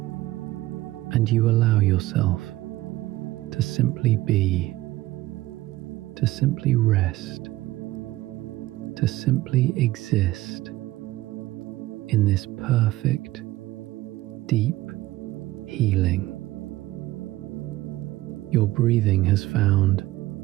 And you allow yourself to simply be, to simply rest, to simply exist in this perfect, deep healing. Your breathing has found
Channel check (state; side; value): quieter; left; 17.4 dB